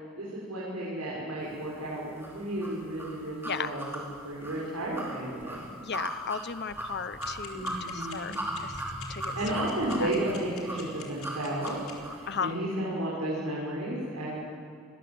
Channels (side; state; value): both; normal; correlation 0.31